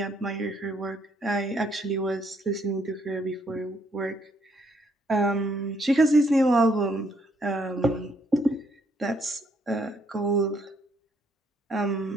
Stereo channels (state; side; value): normal; both; correlation 0.70